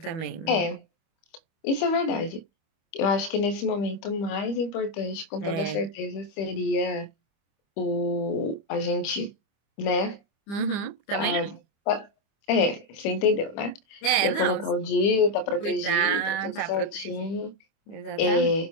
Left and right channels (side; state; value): right; late; 25 ms